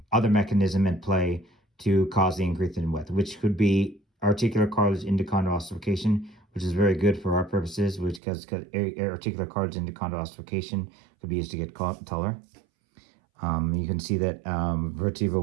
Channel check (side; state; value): left; drops out; at 8.2 s